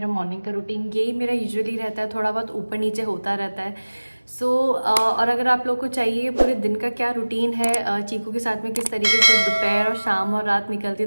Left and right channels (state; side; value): inverted; both; correlation -1.00